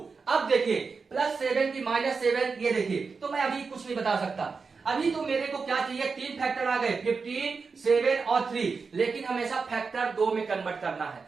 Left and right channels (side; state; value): left; quieter; 4.9 dB